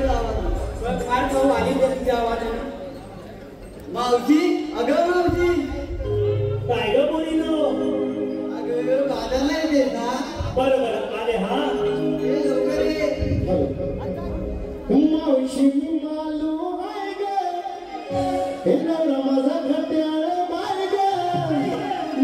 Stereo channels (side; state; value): both; identical; correlation 1.00